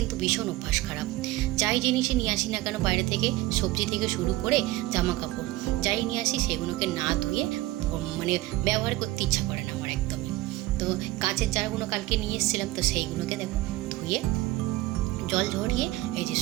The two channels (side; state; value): left; quieter; 18.0 dB